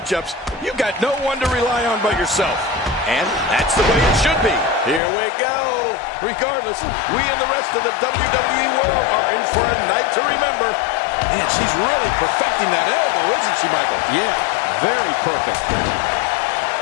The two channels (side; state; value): right; drops out; at 5.0 s